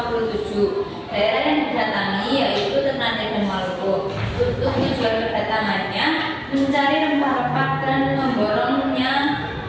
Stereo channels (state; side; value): identical; both; correlation 1.00